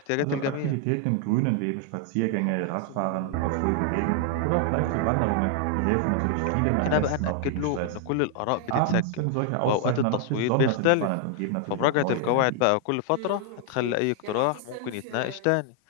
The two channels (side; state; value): both; different; correlation 0.00